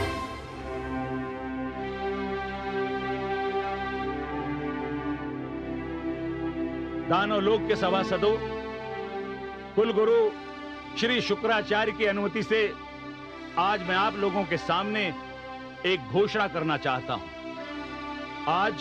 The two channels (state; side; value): identical; both; correlation 1.00